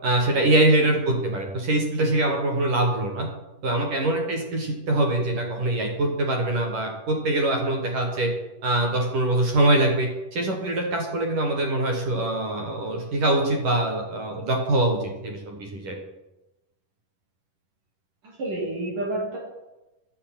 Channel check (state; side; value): late; left; 10 ms